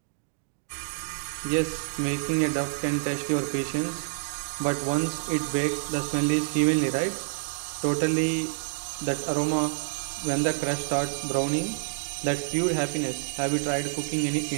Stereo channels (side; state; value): left; silent; digital silence